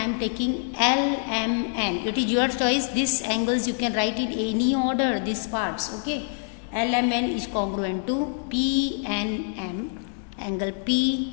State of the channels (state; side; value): silent; right; 57 dB below the other